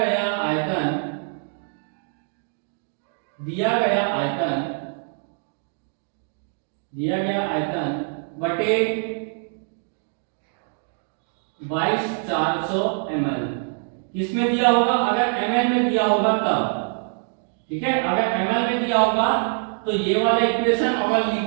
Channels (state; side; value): silent; left; 62 dB below the other